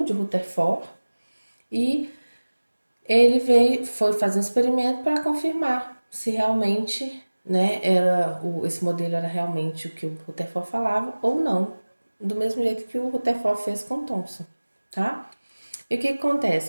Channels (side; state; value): both; inverted; correlation -1.00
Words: de Rutherford e ele foi fazer um experimento para confirmar se realmente, né, esse modelo era realmente o que o Rutherford falava ou não, do mesmo jeito que o Rutherford fez com Thomson, tá? E o que